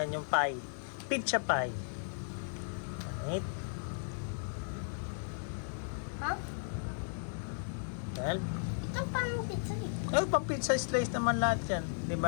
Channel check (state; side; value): silent; right; digital silence